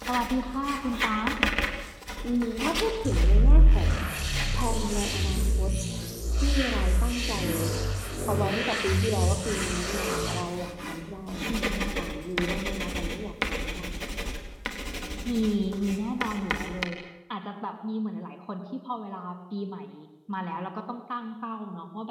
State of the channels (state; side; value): identical; both; correlation 1.00